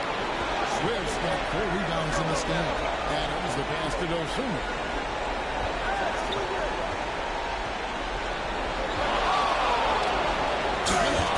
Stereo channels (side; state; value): both; identical; correlation 1.00